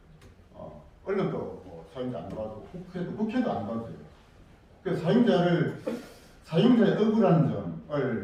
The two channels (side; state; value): both; identical; correlation 1.00